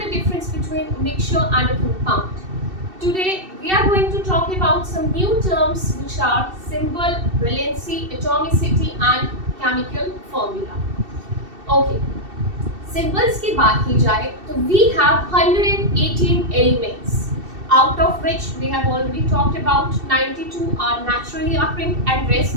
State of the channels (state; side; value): late; left; 2.7 ms